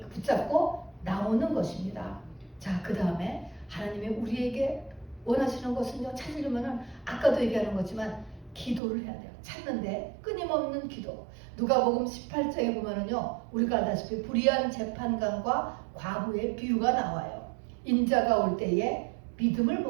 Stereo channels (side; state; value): left; drops out; at 8.8 s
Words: 붙잡고 나오는 것입니다. 자, 그 다음에 하나님이 우리에게 원하시는 것은요, 찾으려면은 아까도 얘기하는 거지만 기도를 해야 돼요. 찾는데 끊임없는 기도. 누가복음 18장에 보면은요, 우리가 알다시피 불의한 재판관과 과부의 비유가 나와요. 인자가 올 때에 믿음을